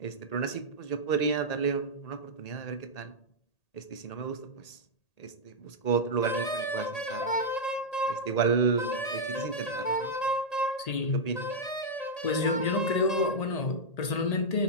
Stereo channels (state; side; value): late; right; 1.8 ms